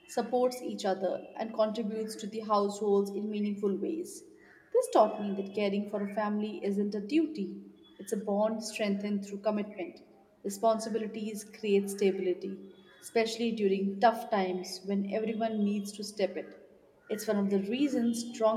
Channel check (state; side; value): identical; both; correlation 1.00